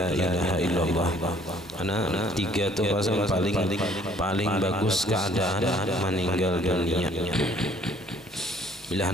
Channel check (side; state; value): both; normal; correlation 0.59